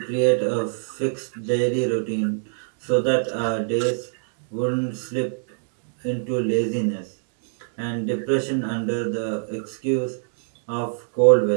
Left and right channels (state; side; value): silent; left; digital silence